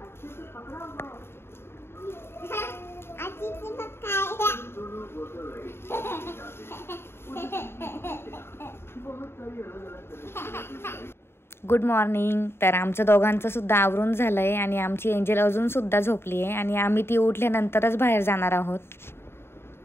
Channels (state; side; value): late; right; 0.12 ms